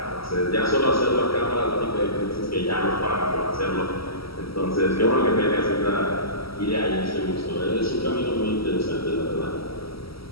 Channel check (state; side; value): late; right; 0.75 ms